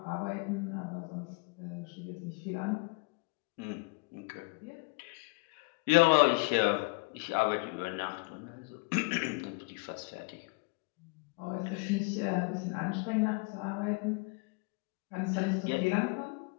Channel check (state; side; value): quieter; right; 28.3 dB